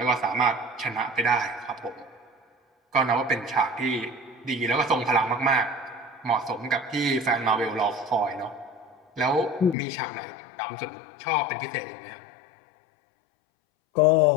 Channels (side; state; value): right; drops out; at 9.8 s